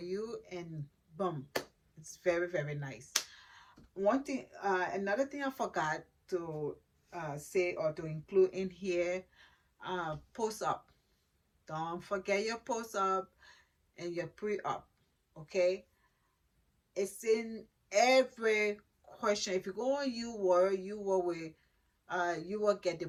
and boom, it's very, very nice. One thing, another thing I forgot to say or to include in here, post up. Don't forget your post up and your pre up. Okay, it's in every question. If you go on UWorld, you will get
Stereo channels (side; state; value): both; identical; correlation 1.00